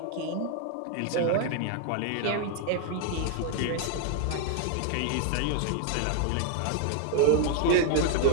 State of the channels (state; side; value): different; both; correlation 0.00